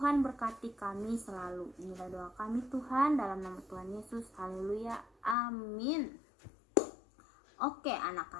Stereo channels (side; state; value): right; drops out; at 5.4 s